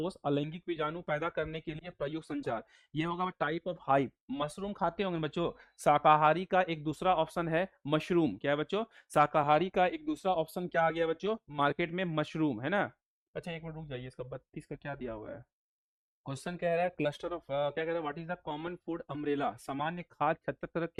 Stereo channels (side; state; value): both; identical; correlation 1.00